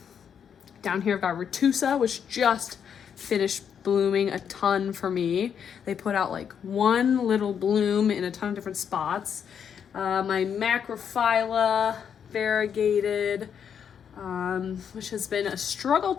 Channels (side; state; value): right; quieter; 7.8 dB